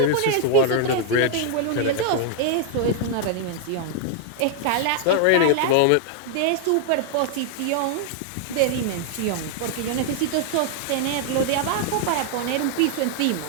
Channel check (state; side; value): different; both; correlation 0.00